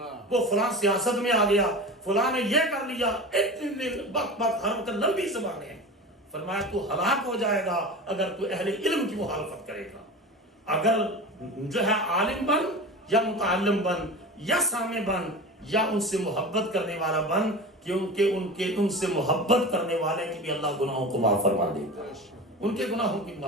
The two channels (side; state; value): both; normal; correlation 0.31